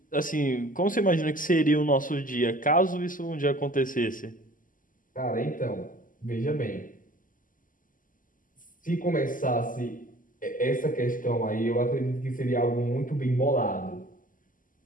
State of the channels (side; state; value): right; late; 0.39 ms